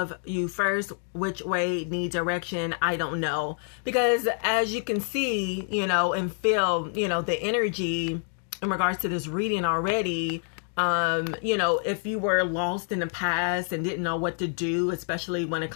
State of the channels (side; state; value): right; silent; 60 dB below the other